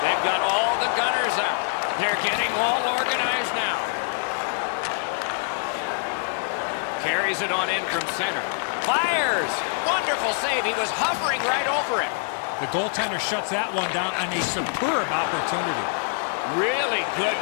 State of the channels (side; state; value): right; silent; 56 dB below the other